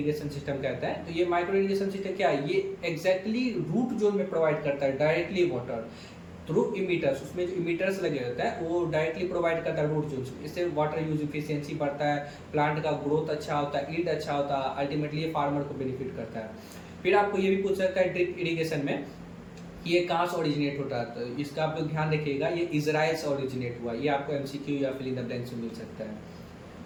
सिस्टम कहता है। तो ये माइक्रो इरिगेशन सिस्टम क्या है, ये एग्जैक्टली रूट जोन में प्रोवाइड करता है डायरेक्टली वाटर थ्रू इमीटर्स। उसमें जो इमीटर्स लगे होते हैं वो डायरेक्टली प्रोवाइड करता है रूट जोन। इससे वाटर यूज इफिशियंसी बढ़ता है, प्लांट का ग्रोथ अच्छा होता है, ईल्ड अच्छा होता है, अल्टीमेटली ये फार्मर को बेनिफिट करता है। फिर आपको ये भी पूछ सकता है ड्रिप इरिगेशन में ये कहाँ से ओरिजिनेट होता है, तो इसका आप लोग ध्यान रखिएगा, ये इजराइल से ओरिजिनेट हुआ। ये आपको एमसीक्यू या फिल इन द ब्लैंक से मिल सकता है।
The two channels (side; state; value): both; identical; correlation 1.00